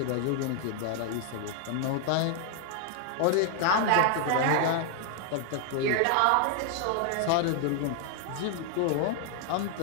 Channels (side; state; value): both; different; correlation 0.00